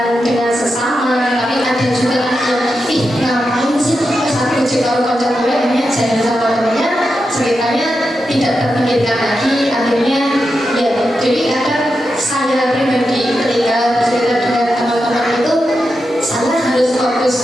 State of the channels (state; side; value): normal; both; correlation 0.88